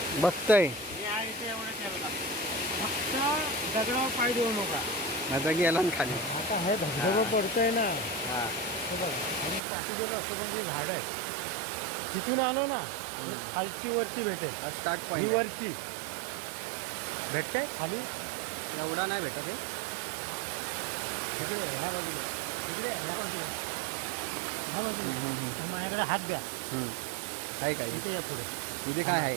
बघतय या इथे एवढं ठेवला. फक्त दगडावर पाय देऊ नका. आता गेला ना खाली. आता हे धबधबा पडतोय ना हा हे बघा आणि पाठीचे ऑक्सिजनची झाड आहे तिथून आलो ना खालची वरती भेटेल. स्टार्ट ही पॉईंट वरची भेटते खाली एवढा नाही भेटत आहे. तिकडे ह्या बाजूला तिकडे ह्या बाजूला ह्या बाजूला माझ्याकडे हात द्या. काय काय इथे या पुढे इथे काय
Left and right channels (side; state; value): left; drops out; at 9.6 s